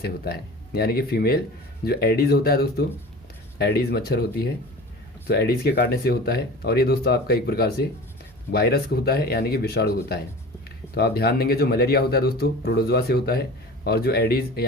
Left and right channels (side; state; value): both; normal; correlation 0.37